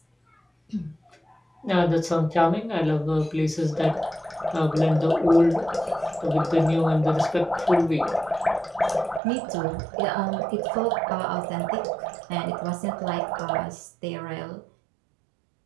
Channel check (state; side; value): drops out; left; at 9.2 s